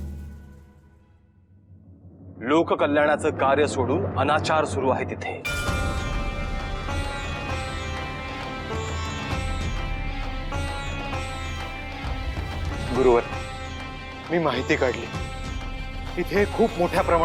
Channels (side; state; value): both; identical; correlation 1.00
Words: लोककल्याणाचं कार्य सोडून अनाचार सुरू आहे तिथे. गुरुवर, मी माहिती काढली. इथे खूप मोठ्या